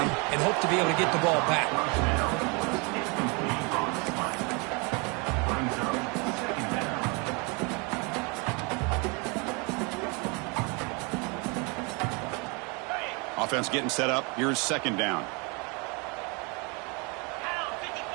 and hope to be able to get the ball back. Offense getting set up. Here's second down.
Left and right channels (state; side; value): quieter; left; 31.0 dB